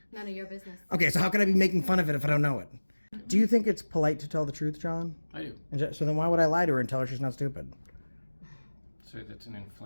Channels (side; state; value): both; inverted; correlation -1.00